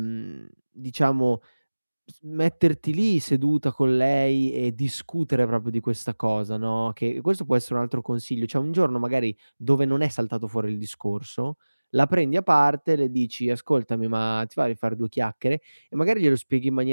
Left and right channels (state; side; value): inverted; both; correlation -1.00